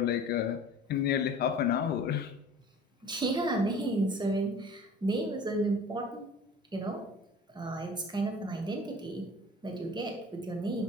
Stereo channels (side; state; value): both; normal; correlation 0.43